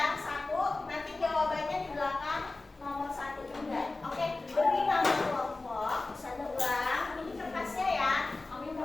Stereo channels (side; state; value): right; quieter; 3.3 dB